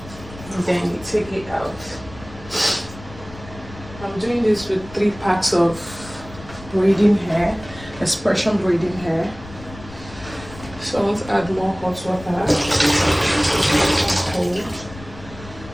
And then you take it out. I'm doing this with 3 packs of braiding hair, Xpression braiding hair. So I want to add more hot water. Cold.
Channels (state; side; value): noise; left; rumble, 17 dB below the sound